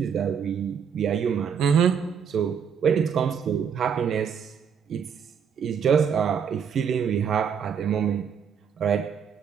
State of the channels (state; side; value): quieter; left; 7.2 dB